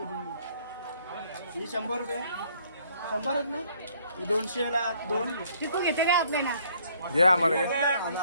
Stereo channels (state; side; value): inverted; both; correlation -0.63